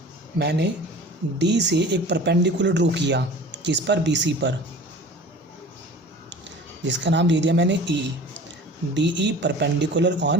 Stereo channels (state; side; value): normal; both; correlation 0.41